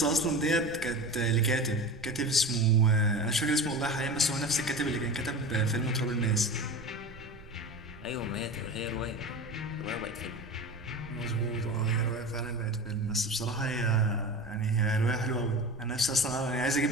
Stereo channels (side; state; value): right; noise; rumble, 19 dB below the sound